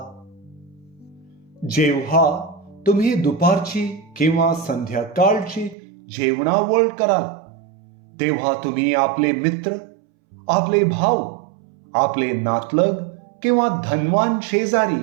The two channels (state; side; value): drops out; left; at 5.8 s